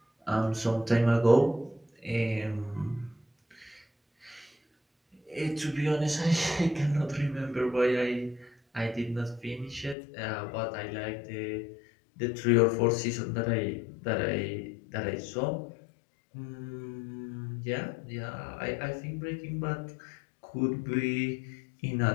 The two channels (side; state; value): right; drops out; at 10.0 s